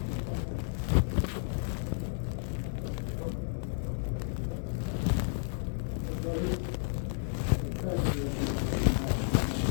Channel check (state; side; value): silent; right; 56 dB below the other